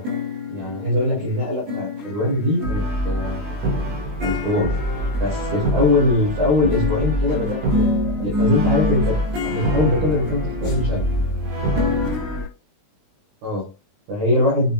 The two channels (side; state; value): left; late; 20 ms